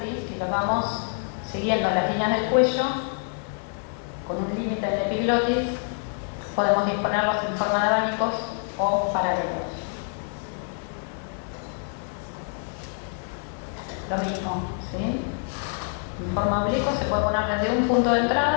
Si lo vamos siguiendo las líneas del cuello, con un límite en la epiglotis, podemos disponerlos en forma de abanicos o paralelos. Lo mismo, ¿sí? En forma oblicua se puede poner desde un punto de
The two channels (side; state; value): right; silent; 55 dB below the other